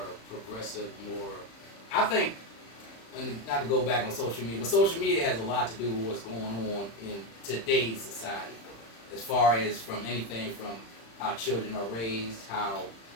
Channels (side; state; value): right; late; 35 ms